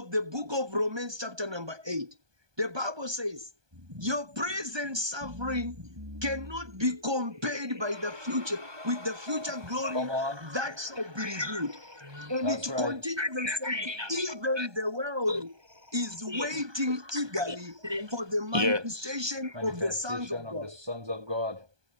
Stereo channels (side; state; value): left; late; 1.2 ms